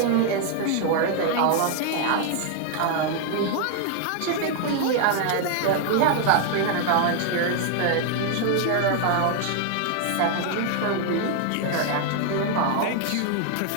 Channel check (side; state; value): both; different; correlation 0.00